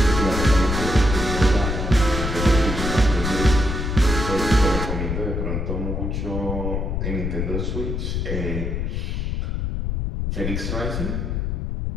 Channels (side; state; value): left; noise; rumble, 2 dB below the sound